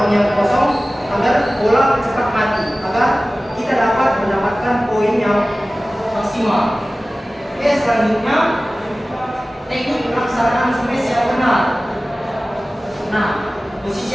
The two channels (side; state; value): both; normal; correlation 0.97